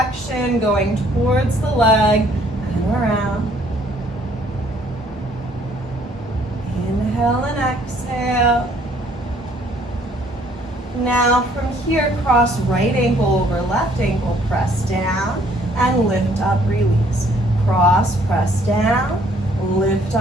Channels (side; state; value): both; normal; correlation 0.62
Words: going towards the leg and around. Inhale and exhale. Now from here, cross right ankle over left ankle, press down and lift up, release. Cross, press down, lift